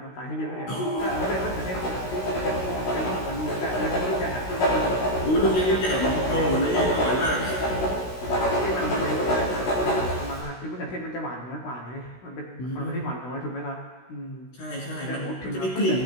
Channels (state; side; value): late; right; 16 ms